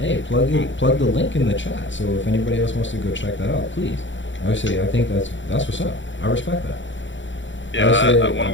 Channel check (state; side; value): late; right; 0.54 ms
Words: hey, plug the link in the chat. So if anybody else wants to go check that out, please. I would say I think that's what's up. I respect that. Yeah, I would say, one of